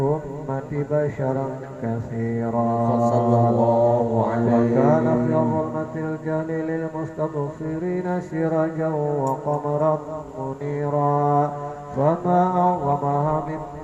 بشرا كثيرا صلى الله عليه وكان في ظلمة الجهل للمستبصرين سراجا وقمرا منيرا فما أعظمها من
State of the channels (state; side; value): identical; both; correlation 1.00